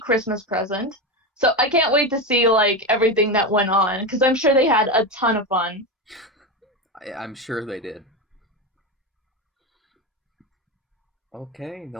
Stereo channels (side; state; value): both; normal; correlation 0.16